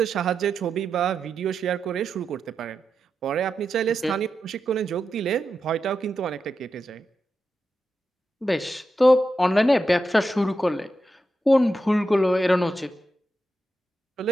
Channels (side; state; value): both; normal; correlation 0.88